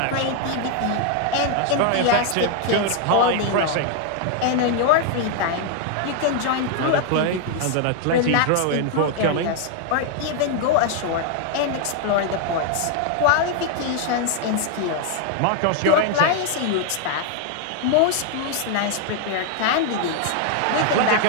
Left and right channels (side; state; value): both; different; correlation 0.00